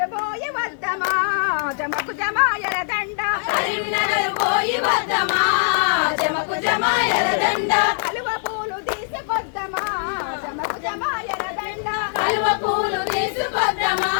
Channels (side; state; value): right; silent; digital silence